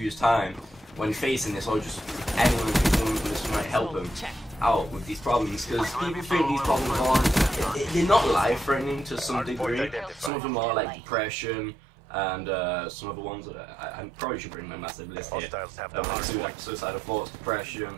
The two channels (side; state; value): left; drops out; at 10.3 s